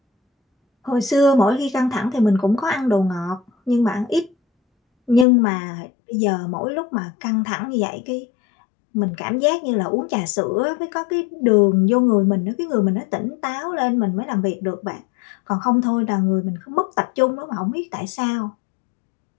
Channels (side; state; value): right; drops out; at 5.2 s